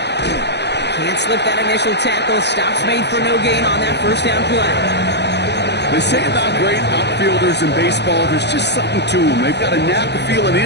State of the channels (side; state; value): right; late; 0.50 ms